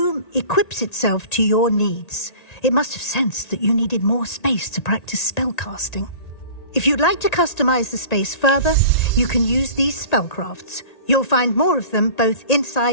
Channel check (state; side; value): late; right; 1.9 ms